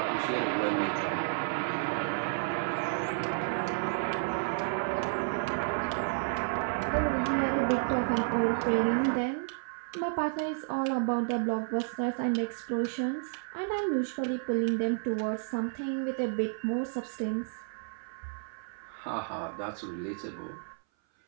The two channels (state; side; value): silent; left; 57 dB below the other